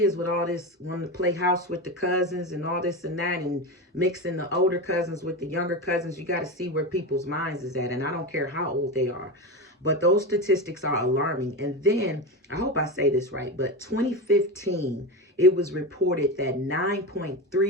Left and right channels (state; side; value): normal; both; correlation 0.20